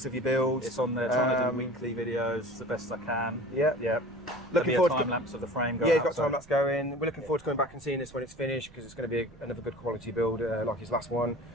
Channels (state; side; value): noise; right; rumble, 24 dB below the sound